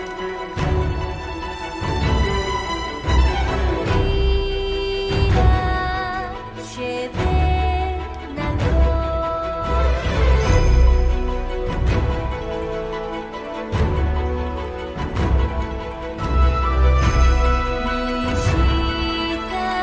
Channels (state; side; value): identical; both; correlation 1.00